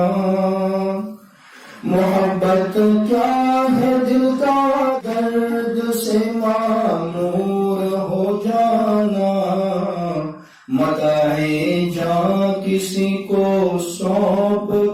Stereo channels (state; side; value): identical; both; correlation 1.00